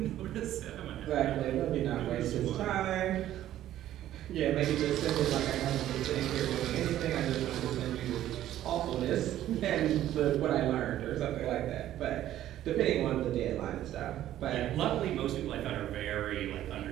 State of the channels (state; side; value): quieter; left; 12.8 dB